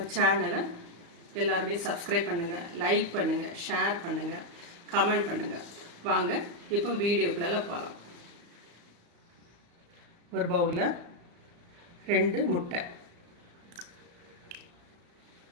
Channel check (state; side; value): late; left; 34 ms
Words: சேனலை எல்லாருமே சப்ஸ்கிரைப் பண்ணுங்கள், லைக் பண்ணுங்கள், ஷேர் பண்ணுங்கள், கமெண்ட் பண்ணுங்கள். வாங்க இப்போ வீடியோக்குள்ள போகலாம். ஒரு பவுலில் 2 முட்டை,